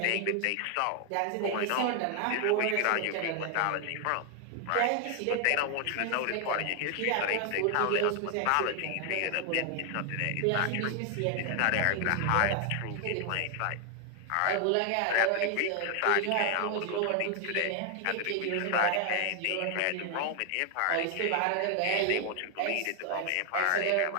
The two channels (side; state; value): both; different; correlation 0.00